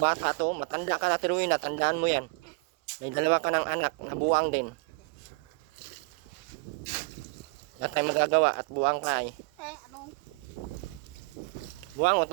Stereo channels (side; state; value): left; quieter; 30.5 dB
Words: to. Matanda ka na tiruin na. Tandaan mo yan. May dalawa ka ng anak na buwang din. Wala tayong magagawa at buwang ka ay. Ano? Buwang o